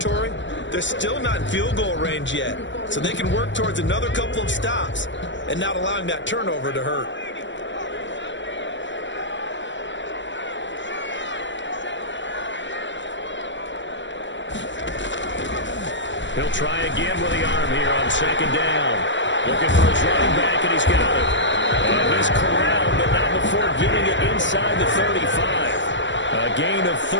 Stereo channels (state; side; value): late; right; 0.54 ms